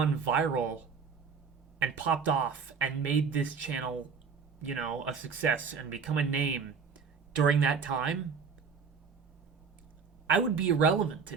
viral and popped off and made this channel, a success and become a name during that time, I would be irrelevant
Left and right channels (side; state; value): left; quieter; 5.8 dB